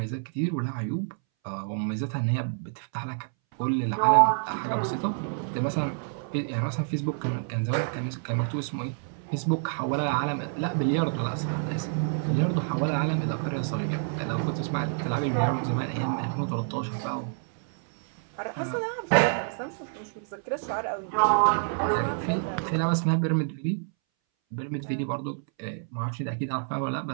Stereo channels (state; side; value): silent; left; 59 dB below the other